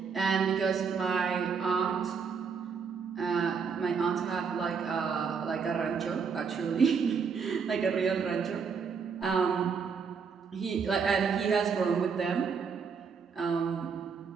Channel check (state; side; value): quieter; left; 5.9 dB